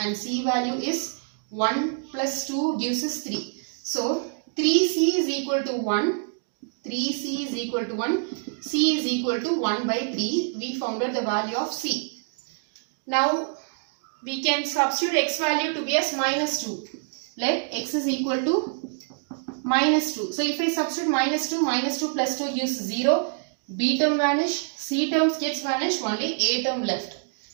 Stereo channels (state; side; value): silent; left; 61 dB below the other